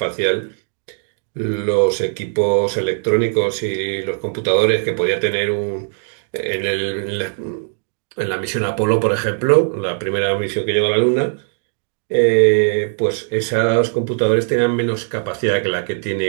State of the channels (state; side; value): silent; left; digital silence